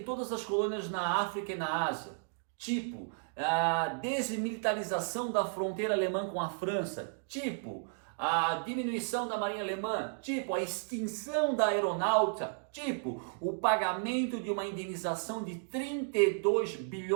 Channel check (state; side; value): silent; left; digital silence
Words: as colônias na África e na Ásia, tipo a desmilitarização da fronteira alemã com a França, tipo a diminuição da marinha alemã, tipo a extinção da aeronáutica, tipo o pagamento de uma indenização de 32